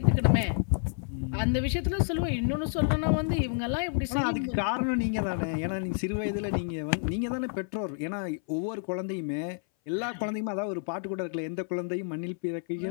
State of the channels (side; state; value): right; silent; 58 dB below the other